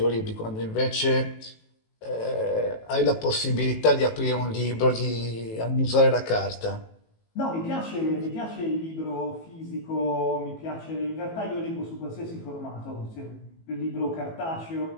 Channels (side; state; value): right; late; 18 ms